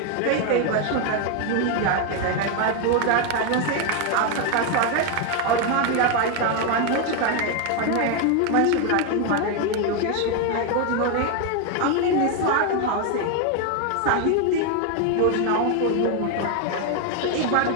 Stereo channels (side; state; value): both; different; correlation 0.01